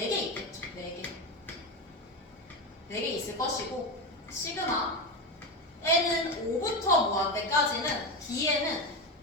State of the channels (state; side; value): normal; both; correlation 0.17